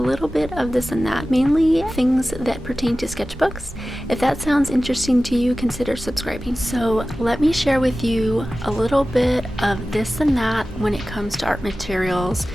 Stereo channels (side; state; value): both; normal; correlation 0.95